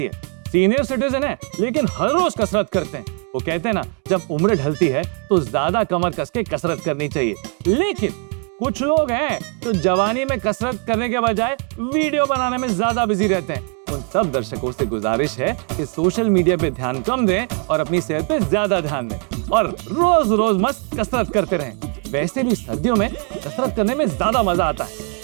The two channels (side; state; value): left; quieter; 35.2 dB